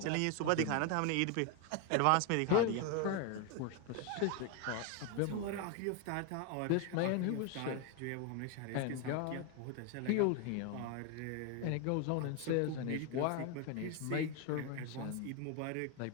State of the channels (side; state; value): both; different; correlation 0.01